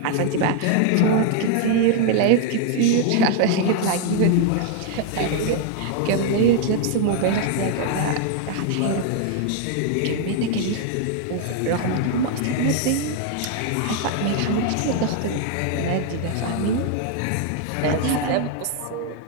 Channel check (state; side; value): different; both; correlation 0.00